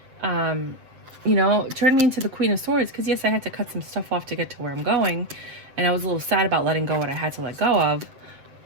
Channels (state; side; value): late; left; 7.7 ms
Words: you know, turned me into the Queen of Swords. Because yes, I had to cut some stuff off to get to where I'm going. And I was a little sad about letting go what I had to let go of.